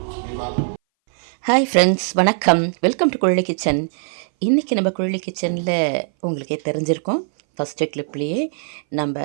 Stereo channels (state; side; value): silent; left; 61 dB below the other